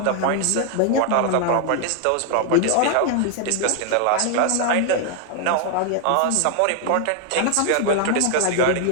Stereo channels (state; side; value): different; both; correlation 0.00